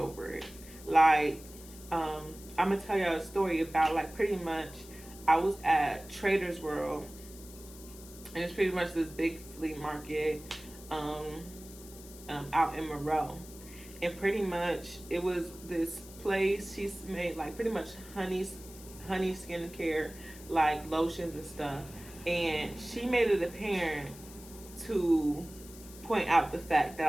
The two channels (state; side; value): noise; left; hiss, 18 dB below the sound